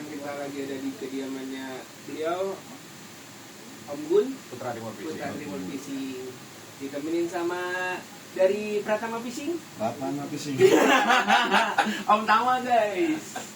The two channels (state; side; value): identical; both; correlation 1.00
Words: kita lagi ada di kediamannya beliau, Om Gun, Putra Timur Fishing. Ditemenin sama dari Pratama Fishing. Pratama Fishing. Om Tama guys.